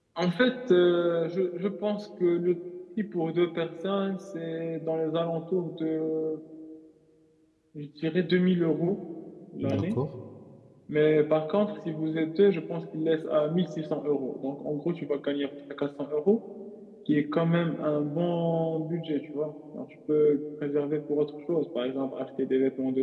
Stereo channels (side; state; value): both; identical; correlation 1.00